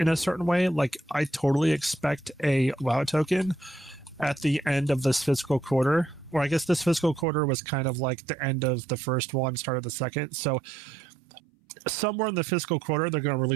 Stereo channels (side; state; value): left; drops out; at 7.2 s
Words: a certain way. Like, I totally expect a WoW token at the end of this fiscal quarter. Or I guess this fiscal quarter was kind of like the end of the first one, start of the second. So somewhere in the fiscal quarter, they're going to